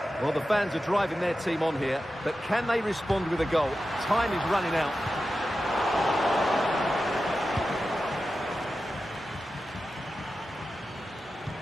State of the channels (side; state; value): both; normal; correlation 0.92